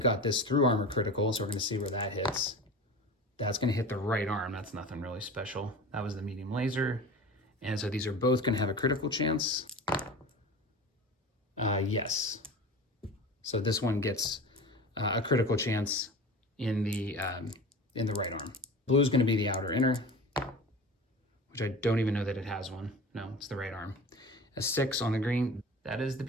this through armor critical, so we're going to see where that hits. That's going to hit the right arm. That's nothing really special. That was the medium laser. And so these are both going to have a critical chance. Yes. So this one gets a critical chance in the right arm. Blue is going to be the outer inner, which I don't even know that it has one. No, it's the right arm. A 6 on the green. That is the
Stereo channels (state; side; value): normal; both; correlation 0.34